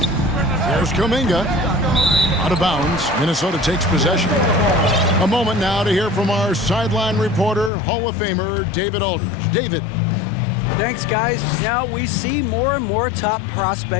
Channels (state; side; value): drops out; right; at 7.7 s